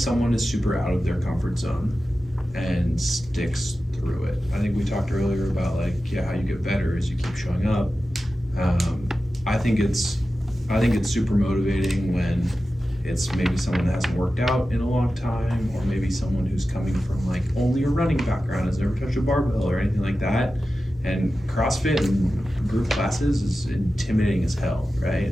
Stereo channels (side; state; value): both; normal; correlation 0.93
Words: is super out of their comfort zone and sticks through it, I think we talked earlier about like, yeah, how you get better is you keep showing up. I think it's super motivating when it's maybe someone that hasn't worked out in a long time, or maybe someone who's coming from like only a running background, has never touched a barbell or anything like that. And CrossFit and group classes is intimidating as hell, right?